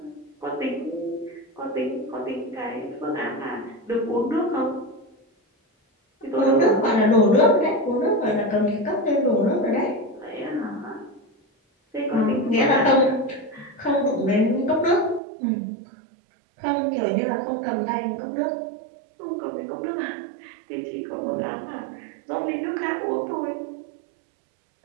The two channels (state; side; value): drops out; left; at 15.2 s